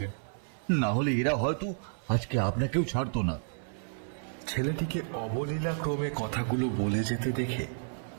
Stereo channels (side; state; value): left; silent; 57 dB below the other